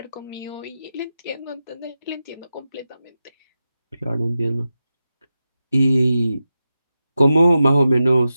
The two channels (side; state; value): both; inverted; correlation -0.91